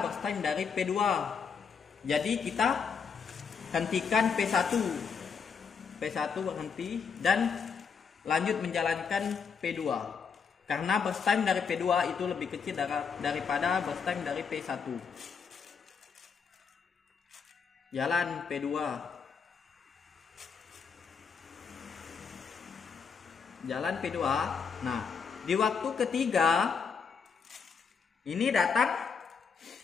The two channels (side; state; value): right; quieter; 6.0 dB